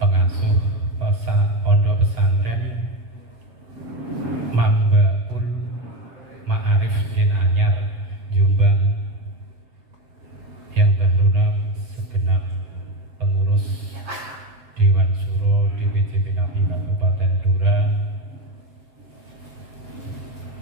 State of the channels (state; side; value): late; left; 7.9 ms